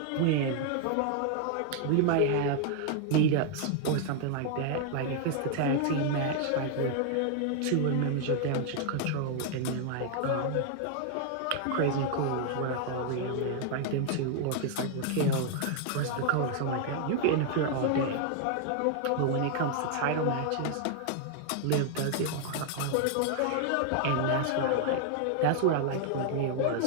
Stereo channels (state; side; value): different; both; correlation 0.00